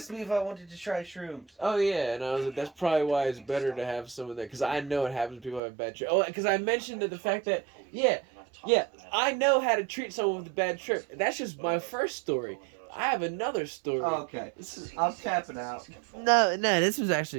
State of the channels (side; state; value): left; drops out; at 5.6 s